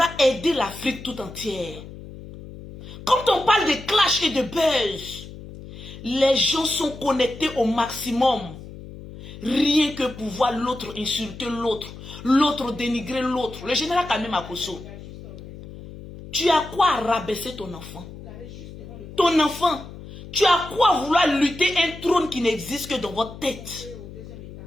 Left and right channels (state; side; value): noise; left; hum, 14 dB below the sound